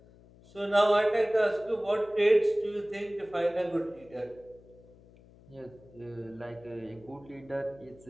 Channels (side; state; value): left; noise; hum, 24 dB below the sound